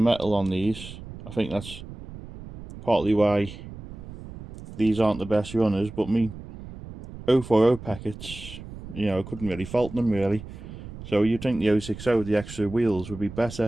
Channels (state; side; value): noise; right; rumble, 13 dB below the sound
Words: on these. I think that's partly why these aren't the best runners, but me 040 packets, you know, I couldn't really fault them really. So you'd think the 060 with the extra wheels would be